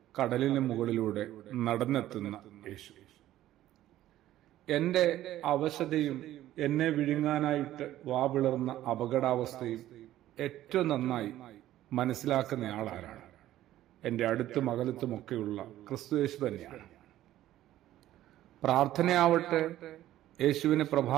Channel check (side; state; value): left; quieter; 13.7 dB